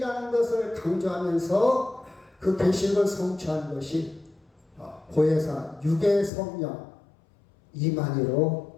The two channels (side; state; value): right; drops out; at 6.3 s